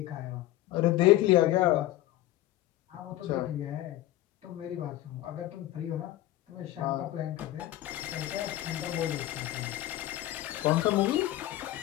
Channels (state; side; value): quieter; right; 15.1 dB